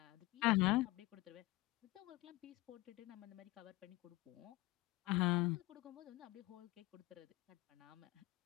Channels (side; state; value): right; quieter; 20.1 dB